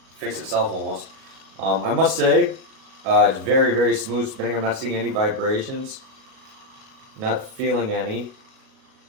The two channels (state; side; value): late; left; 37 ms